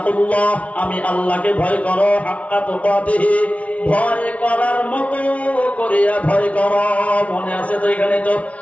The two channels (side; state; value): right; late; 0.065 ms